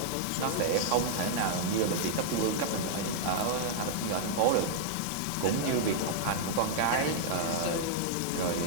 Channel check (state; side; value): different; both; correlation -0.01